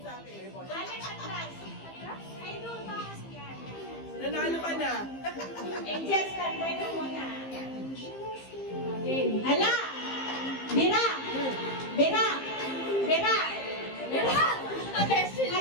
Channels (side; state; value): right; late; 15 ms